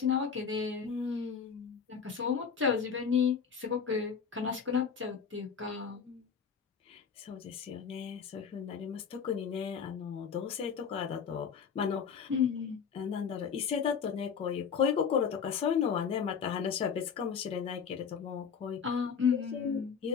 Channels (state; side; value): quieter; right; 6.6 dB